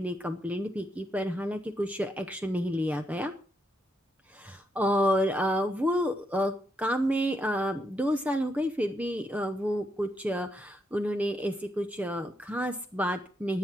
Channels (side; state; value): both; normal; correlation 0.80